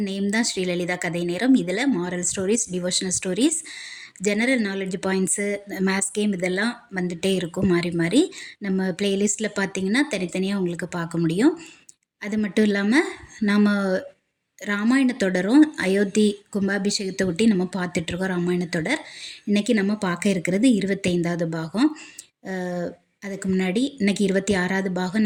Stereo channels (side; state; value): both; identical; correlation 1.00